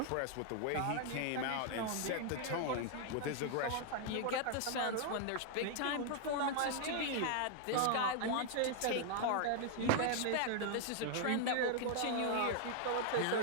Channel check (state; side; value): different; both; correlation 0.00